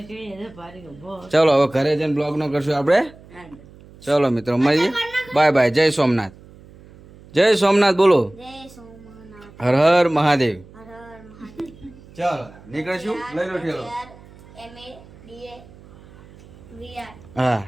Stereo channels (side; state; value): right; noise; hum, 22 dB below the sound